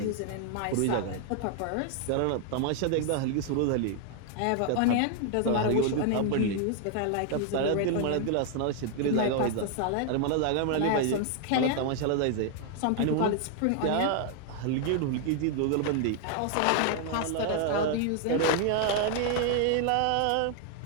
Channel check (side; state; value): both; different; correlation 0.00